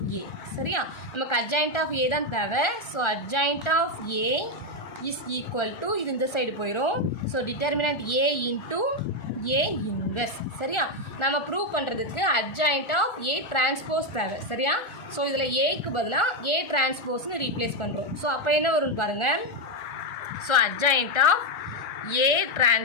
A. சரியா? நமக்கு adjoint ஆஃப் A தான் தேவை. So adjoint of A is equal to இது இந்த side போயிடும். So determinant A into A inverse. சரியா? நம்ம ப்ரூவ் பண்ணுறதுக்கு adjoint ஆஃப் A டிரான்ஸ்போஸ் தேவை. சரியா? ஸோ இதில் Aக்கு பதிலாக A டிரான்ஸ்போஸ்னு ரீப்ளேஸ் பண்ணுறோம். ஸோ அப்போ என்ன வரும்னு பாருங்கள். So adjoint of A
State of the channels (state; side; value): late; right; 1.4 ms